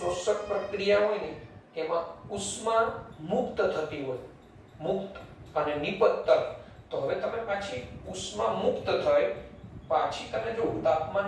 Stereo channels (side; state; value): both; identical; correlation 1.00